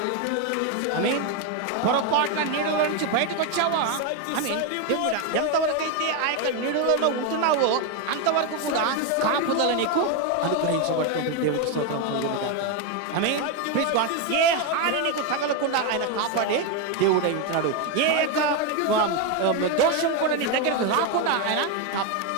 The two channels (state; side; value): different; both; correlation 0.02